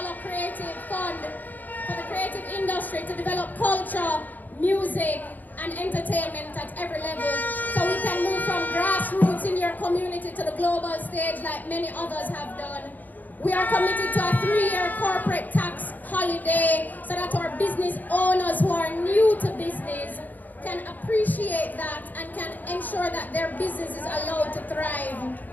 creative fund for the creative industry to develop culture, music, and entertainment at every level, so we can move from grassroots in your community to the global stage like many others have done. We are committed to a 3-year corporate tax holiday so that our business owners who are new to business can appreciate that and can ensure that their business is allowed to thrive.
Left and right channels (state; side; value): late; right; 0.083 ms